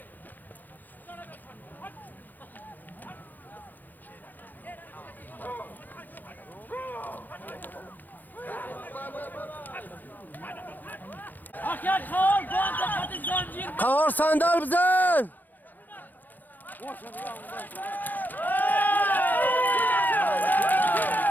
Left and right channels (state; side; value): late; right; 0.085 ms